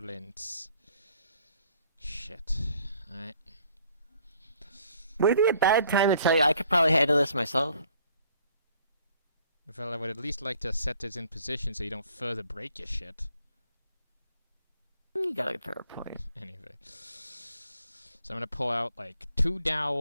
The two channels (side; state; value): both; inverted; correlation -0.61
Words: Shit. Alright. Would it be a bad time to tell you I could probably handle this myself? Well, I would at least like to set this in position so you don't further break your shit. You got a fair point. Anyway. So I'm gonna pull out like 2